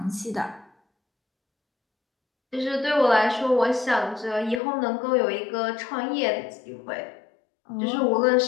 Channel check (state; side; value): drops out; right; at 4.6 s